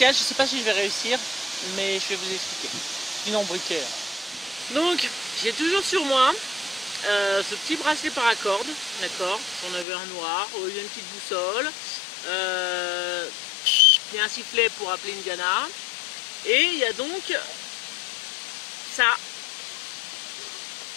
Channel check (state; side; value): drops out; right; at 9.9 s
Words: Je ne sais pas si je vais réussir, mais je vais vous expliquer. Sinon briquet. Donc, j'ai toujours sur moi ce petit bracelet paracorde, d'accord. J'en avais un noir, il y a une petite boussole. Il y a un sifflet pour appeler une gana. Et il y a donc ça